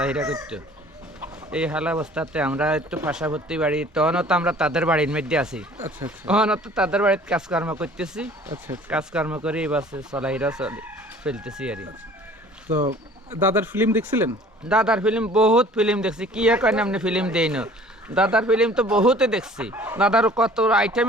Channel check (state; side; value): normal; both; correlation 0.50